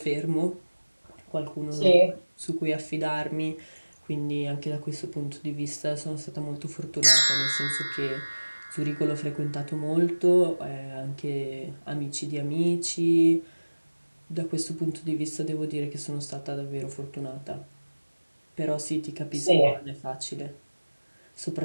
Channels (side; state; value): both; inverted; correlation -1.00